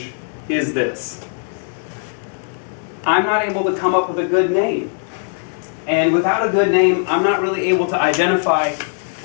is this? I'm not able to come up with a good name. And without a good name, I'm not really able to identify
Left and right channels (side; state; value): right; silent; 66 dB below the other